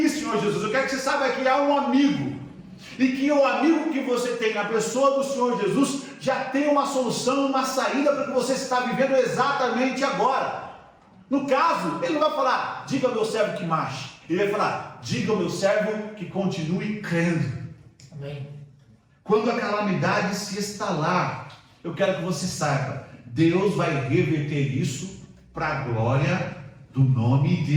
Senhor Jesus? Eu quero que você saiba que há um amigo, e que o amigo que você tem na pessoa do Senhor Jesus já tem uma solução, uma saída para o que você está vivendo exatamente agora. No caso, ele não vai falar: diga ao meu servo que marche. Ele vai falar: diga ao meu servo que continue crendo. Amém. Quando a calamidade se instalar, eu quero que você saiba, Deus vai reverter isso para a glória do nome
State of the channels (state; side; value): identical; both; correlation 1.00